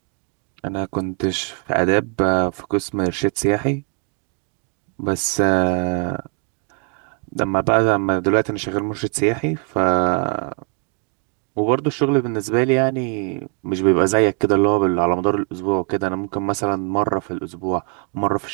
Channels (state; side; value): quieter; left; 39.3 dB